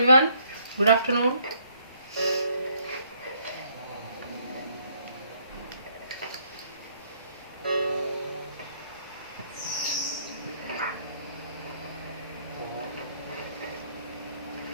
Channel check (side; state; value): both; inverted; correlation -0.67